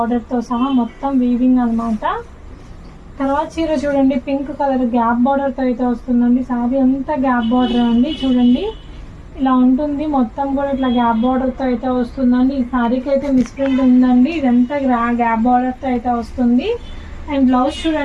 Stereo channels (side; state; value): both; identical; correlation 1.00